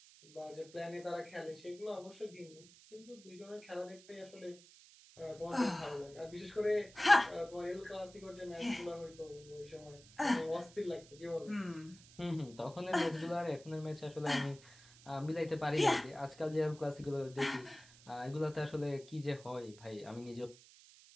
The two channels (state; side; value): noise; right; hiss, 21 dB below the sound